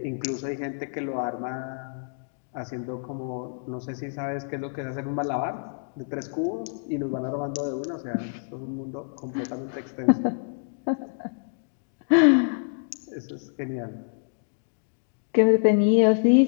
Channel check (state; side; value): silent; right; digital silence